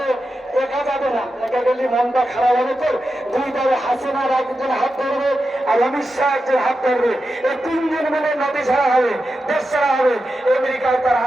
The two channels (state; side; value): normal; both; correlation 0.90